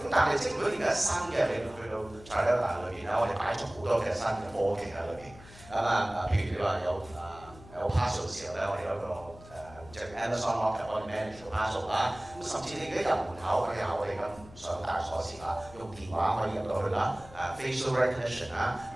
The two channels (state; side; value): noise; left; hum, 20 dB below the sound